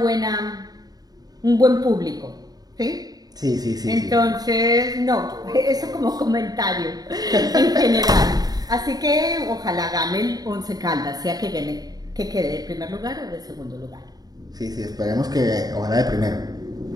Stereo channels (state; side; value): late; left; 0.19 ms